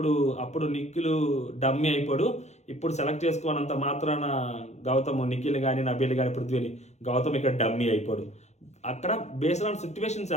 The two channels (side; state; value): right; late; 0.33 ms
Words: అప్పుడు నిఖిల్ డమ్మీ అయిపోడు, ఇప్పుడు సెలెక్ట్ చేసుకోనంత మాత్రాన నిఖిల్ కానీ నబీల్ కానీ పృథ్వీని గౌతమ్ ఇక్కడ డమ్మీ అయిపోడు. అక్కడ బేస్డ్ ఆన్ సిచ్యువేషన్స్